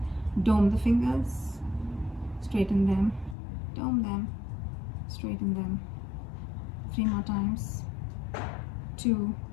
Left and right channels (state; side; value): drops out; right; at 3.4 s